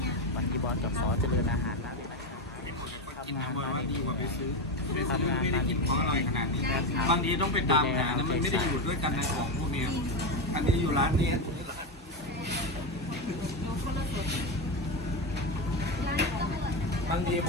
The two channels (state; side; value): normal; both; correlation 0.13